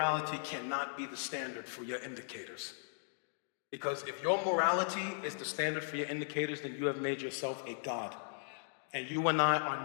cannot be the standard for your indicators. Because if your morality is the standard for your indicators, then you have made yourself a God. And you and I are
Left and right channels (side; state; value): right; silent; digital silence